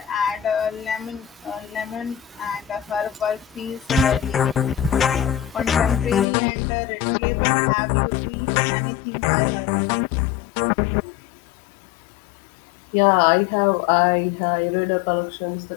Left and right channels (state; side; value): drops out; right; at 6.2 s